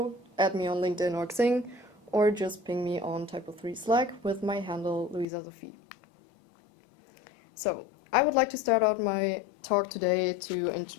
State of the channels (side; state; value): right; drops out; at 5.2 s